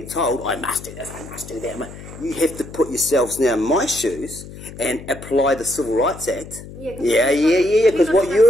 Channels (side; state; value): left; noise; hum, 15 dB below the sound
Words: told, I must do this, I must do that. You have to put yourselves now in my shoes and apply the Civil Rights Act. Yeah, because what